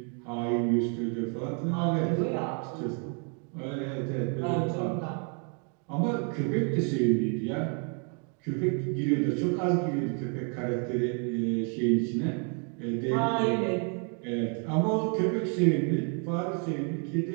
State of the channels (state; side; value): quieter; left; 39.6 dB